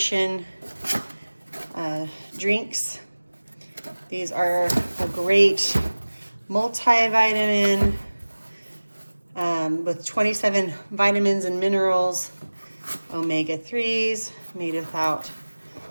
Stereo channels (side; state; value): both; inverted; correlation -1.00